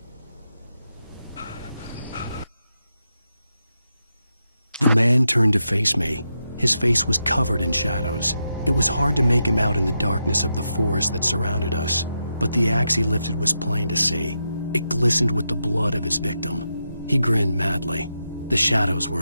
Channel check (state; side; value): inverted; both; correlation -0.86